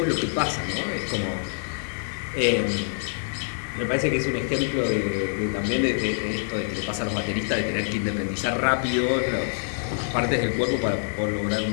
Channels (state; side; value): silent; right; digital silence